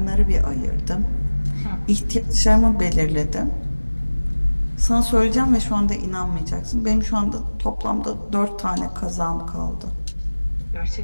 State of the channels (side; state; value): both; inverted; correlation -1.00